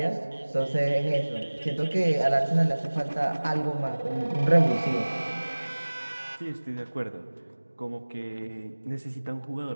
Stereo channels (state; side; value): inverted; both; correlation -1.00